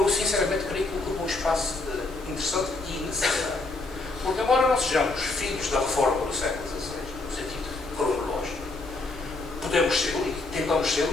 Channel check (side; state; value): right; quieter; 3.2 dB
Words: sinceramente creio que ocupa um espaço interessante e necessário. Porque embora não sejamos filhos da reforma do século XVI, no sentido cronológico, podemos ser, e tentamos ser,